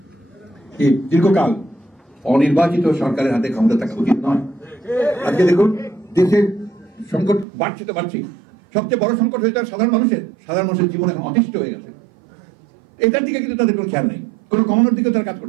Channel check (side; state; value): left; drops out; at 7.5 s